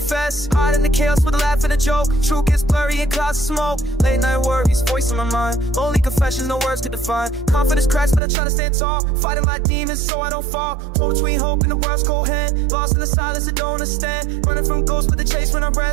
Hide in the chaos with a laugh and a joke. Truth gets blurry in clouds of smoke. Late night worries, voice in my mind. Lonely confessions, no words to define. Confidence cracks, but I try to stand tall. Fighting my demons so I don't fall. Hold between hope and the world's cold hand. Lost in the silence I don't understand. Running from ghosts but the chase when I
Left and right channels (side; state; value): left; drops out; at 8.2 s